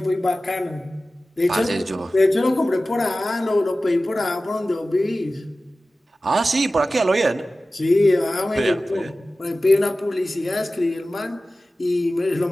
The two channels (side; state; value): both; normal; correlation 0.96